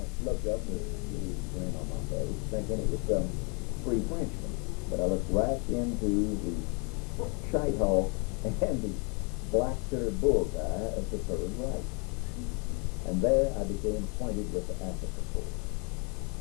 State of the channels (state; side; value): quieter; right; 34.3 dB